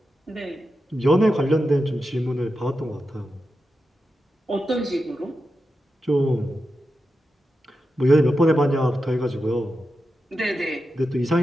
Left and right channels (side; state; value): both; normal; correlation 0.90